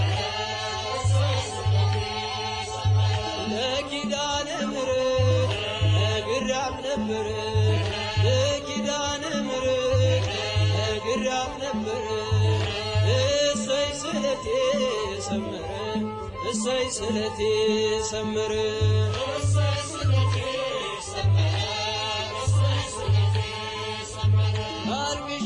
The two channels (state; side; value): identical; both; correlation 1.00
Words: ለኪዳነ ምሕረት ነግሬያት ነበር ለኪዳነ ምሕረት ነግሬያት ነበር እሰይ ስለቴ ሰመረ እሰይ ስለቴ ሰመረ